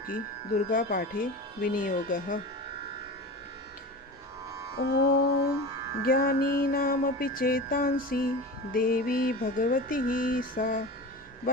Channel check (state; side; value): normal; both; correlation 0.30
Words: दुर्गा पाठे विनियोगः। ओम ज्ञानीनामपि चेतांसि देवी भगवती सा